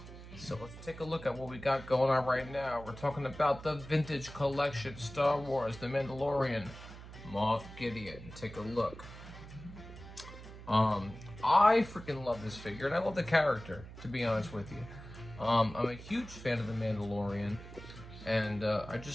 So let's take a look at what we got going on right now. We're talking about the Vintage Collection Star Wars, The Mandalorian, MOFF Gideon. Take a look. I freaking love this figure, and I love the character, to be honest with you. I'm a huge fan of The Mandalorian, and I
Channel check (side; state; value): right; noise; hum, 14 dB below the sound